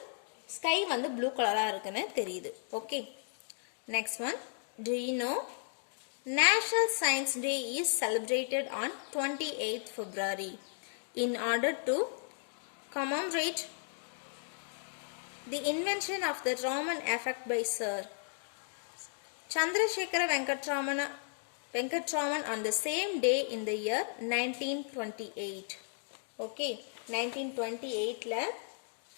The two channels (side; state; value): right; silent; digital silence